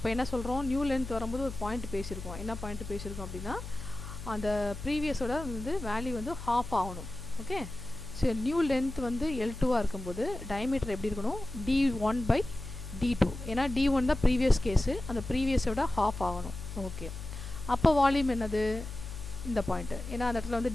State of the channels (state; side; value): noise; left; hum, 10 dB below the sound